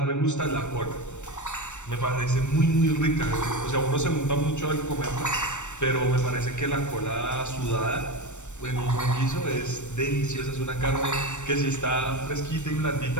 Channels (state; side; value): late; right; 0.84 ms